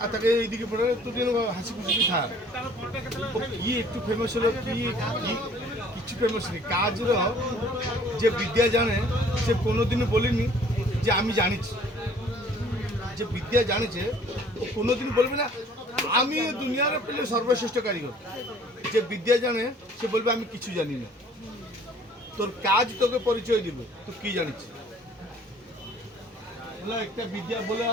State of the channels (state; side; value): normal; both; correlation 0.55